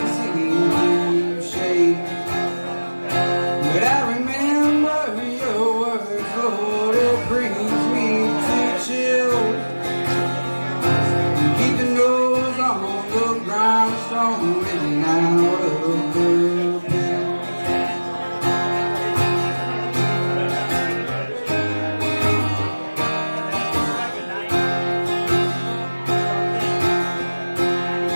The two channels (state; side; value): inverted; both; correlation -1.00